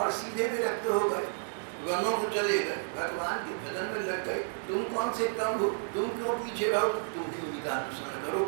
सीधे विरक्त हो गए, वनों को चले गए, भगवान के भजन में लग गए। तुम कौन से कम हो, तुम क्यों पीछे रहो, तुम भी उन्हीं का अनुसरण करो,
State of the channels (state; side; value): silent; left; digital silence